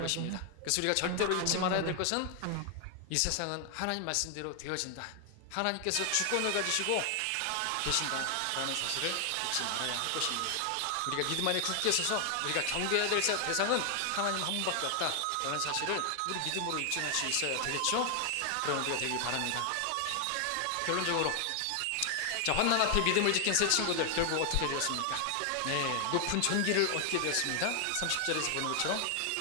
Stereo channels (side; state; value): both; different; correlation 0.00